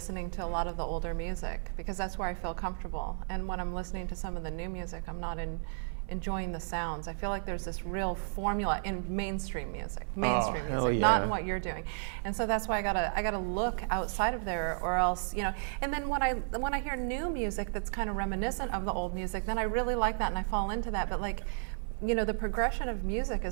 to a lot of the older music because that's where I feel comfortable. And when I'm listening to some of the new music, I'm not enjoying the sounds. I feel like there's this real formula in mainstream music, not in what you're doing. And so that's why I gotta look outside of there, or else, you know. And then when I hear new music that's kind of reminiscent of the old music, then I really like that and I fall into that. But like, you know, the progression of music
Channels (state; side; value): silent; left; 56 dB below the other